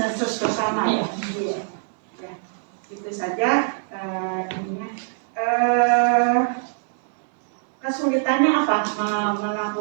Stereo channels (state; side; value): silent; left; digital silence